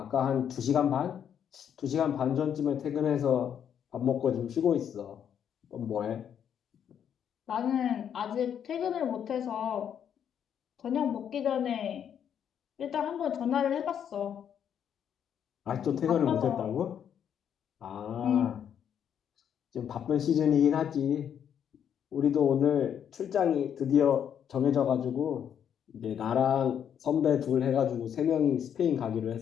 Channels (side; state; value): right; quieter; 8.7 dB